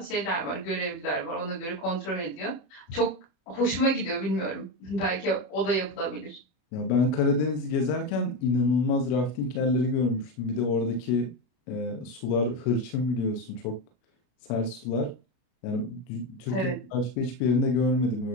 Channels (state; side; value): late; right; 33 ms